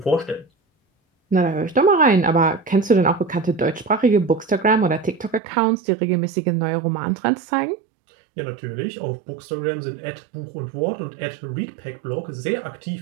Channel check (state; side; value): drops out; left; at 5.4 s